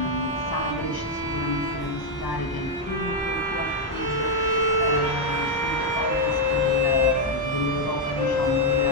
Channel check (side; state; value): both; normal; correlation 0.00